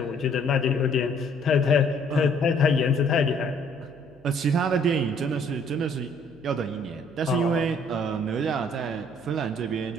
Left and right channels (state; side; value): noise; right; hum, 27 dB below the sound